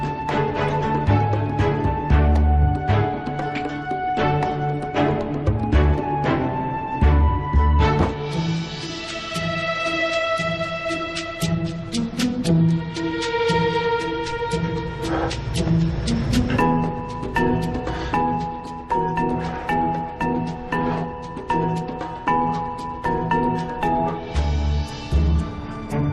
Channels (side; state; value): both; identical; correlation 1.00